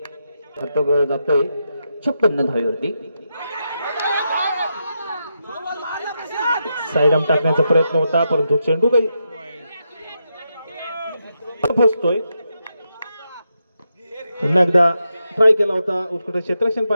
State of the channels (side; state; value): both; inverted; correlation -0.85